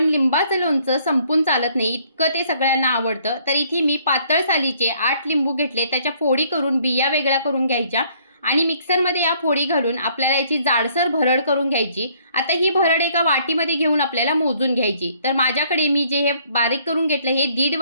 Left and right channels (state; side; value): inverted; both; correlation -0.63